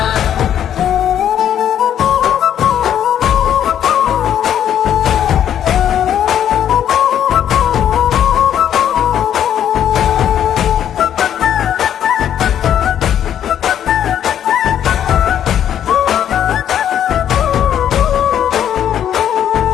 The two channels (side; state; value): right; quieter; 10.0 dB